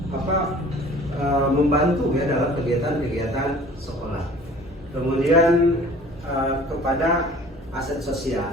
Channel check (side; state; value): both; normal; correlation 0.48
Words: membantu ya dalam kegiatan-kegiatan sekolah. Kemudian kepada aset